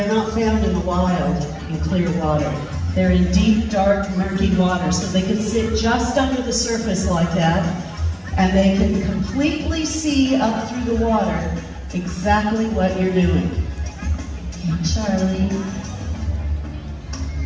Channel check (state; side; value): identical; both; correlation 1.00